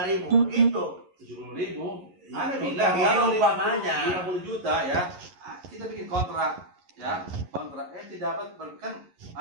begitu. 70.000. Anda Itu bilang kalau umpamanya. 50 juta ya, kita bikin kontrak ya, kontrak. Ente dapat kan,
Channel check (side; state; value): left; late; 11 ms